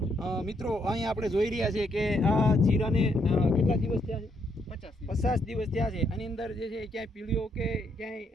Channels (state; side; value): normal; both; correlation 0.74